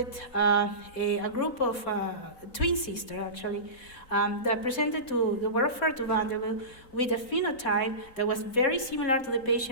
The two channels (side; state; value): right; late; 3.9 ms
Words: a group of twin sisters, actually, that were referred to Vanderbilt with a phenotype that was very similar to the